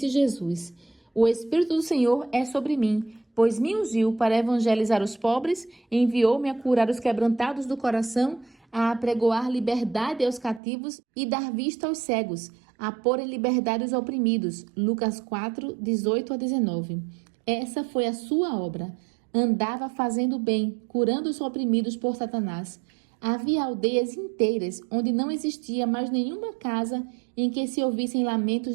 Jesus: O Espírito do Senhor é sobre mim, pois me ungiu para evangelizar os pobres, enviou-me a curar os quebrantados do coração, a apregoar liberdade aos cativos e dar vista aos cegos, a pôr em liberdade os oprimidos. Lucas 4, 18 a 19. Essa foi a sua obra. Andava fazendo bem, curando os oprimidos por Satanás. Havia aldeias inteiras onde não existia mais nenhuma casa em que se ouvissem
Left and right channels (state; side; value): drops out; left; at 10.6 s